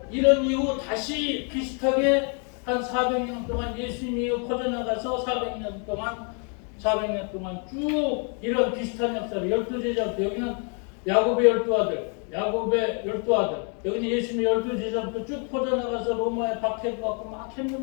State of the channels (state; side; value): quieter; right; 39.2 dB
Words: 이런 이후 다시 비슷하게 한 400년 동안 예수님이 퍼져나가서 400년 동안 쭉 이런 비슷한 역사를 12제자부터 여기는 야곱의 12아들, 여기는 예수님의 12제자부터 쭉 퍼져나가서 로마에 박해를 받고 막